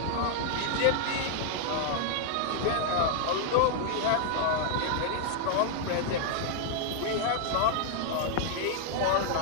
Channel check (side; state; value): both; different; correlation -0.01